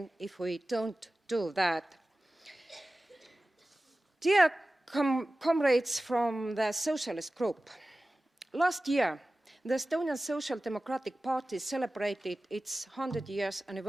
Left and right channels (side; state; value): both; normal; correlation 0.96